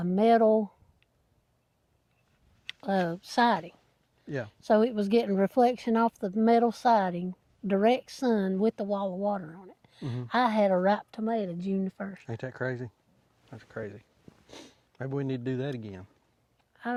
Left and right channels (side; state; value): both; identical; correlation 1.00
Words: metal siding. Yeah. So it was getting reflection off the metal siding, direct sun with the wall of water on it. Mm-hmm. I had a ripe tomato June the 1st. Ain't that crazy? That's crazy. Maybe we need to do that again.